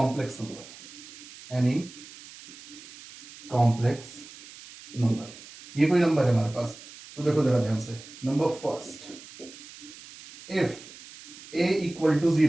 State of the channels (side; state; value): right; noise; hiss, 18 dB below the sound